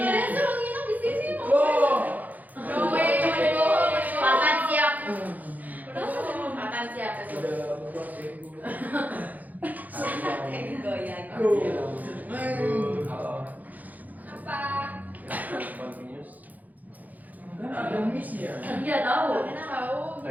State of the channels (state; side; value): late; left; 0.081 ms